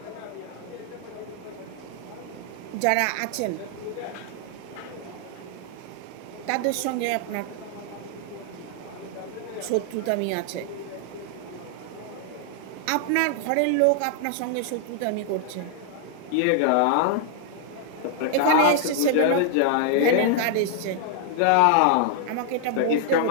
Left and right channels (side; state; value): both; different; correlation 0.00